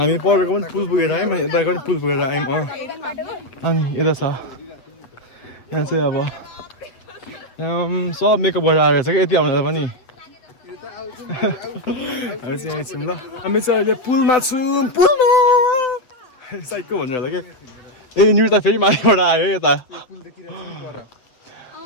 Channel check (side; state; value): right; late; 7.8 ms